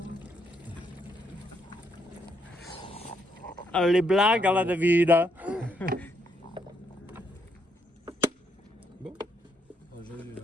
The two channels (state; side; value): normal; both; correlation 0.74